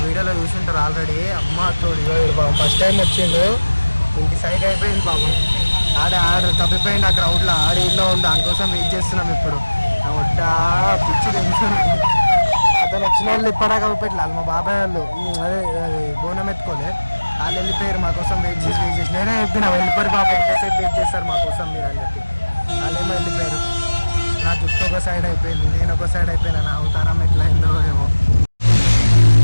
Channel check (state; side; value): inverted; both; correlation -1.00